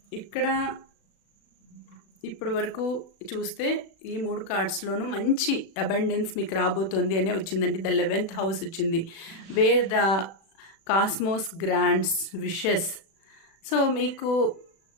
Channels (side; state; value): right; late; 36 ms